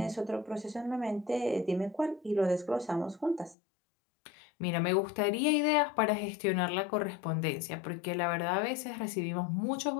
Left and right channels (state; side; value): drops out; right; at 3.6 s